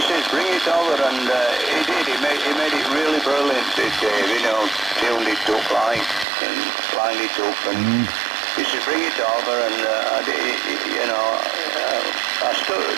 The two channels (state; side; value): drops out; left; at 6.2 s